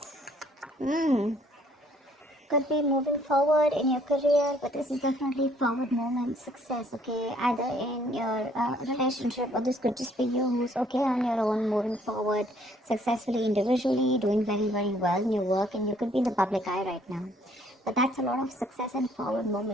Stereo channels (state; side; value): normal; both; correlation 0.63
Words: Hmm, could be moving forward in your career, but this is definitely forward movement, success, okay? Either in your relationship, or this could just be you who's okay on your own, moving forward successfully individually, doing very, very well in your work, and you could be in the public eye right now. But that's a lot of success and forward